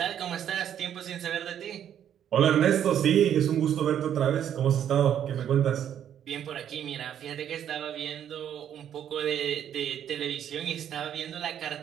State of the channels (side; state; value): left; quieter; 9.8 dB